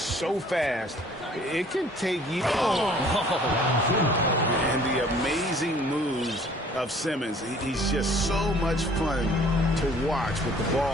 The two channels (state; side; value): normal; both; correlation 0.54